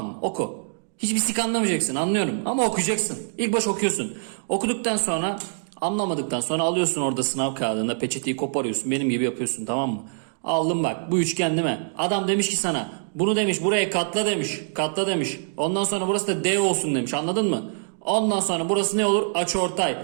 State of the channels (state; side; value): silent; left; digital silence